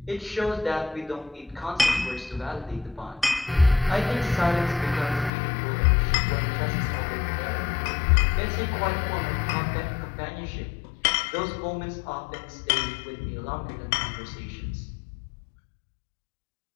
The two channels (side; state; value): right; drops out; at 5.3 s